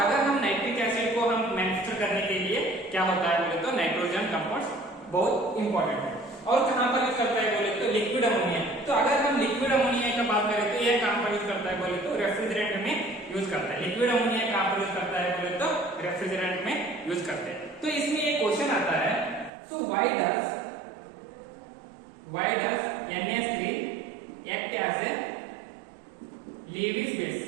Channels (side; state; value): left; drops out; at 19.5 s